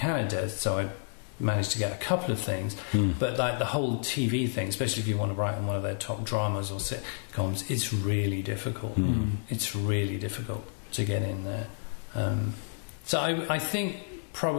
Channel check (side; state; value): right; silent; digital silence